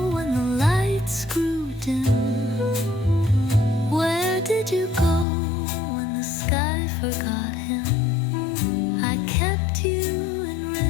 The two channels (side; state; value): right; drops out; at 5.2 s